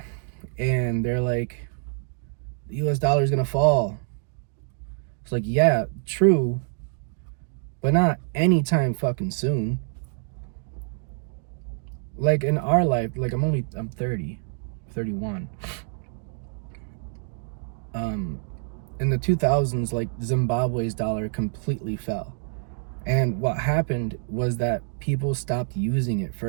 and they're like, the US dollar is gonna fall, it's like, yeah, true, but not anytime fucking soon. Like in our life, like I'm 30, 31. In the 2000s, like Zimbabwe's dollar completely fell. And what happened was that people stopped using it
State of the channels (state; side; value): silent; left; 61 dB below the other